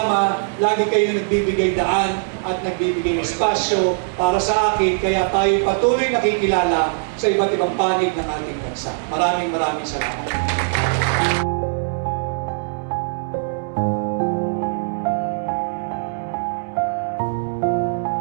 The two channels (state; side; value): silent; left; 63 dB below the other